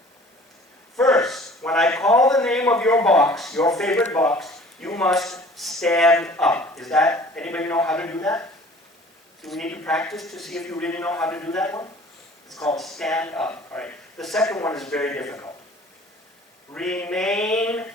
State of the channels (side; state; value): both; normal; correlation 0.49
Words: First, when I call the name of your box, your favorite box, you must stand up. Anybody know how to do that? Do we need to practice to see if you really know how to do that one? It's called stand up. All right. The second one is very difficult. Remain